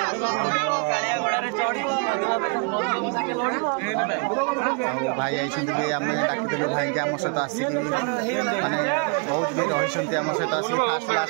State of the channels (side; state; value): left; quieter; 35.4 dB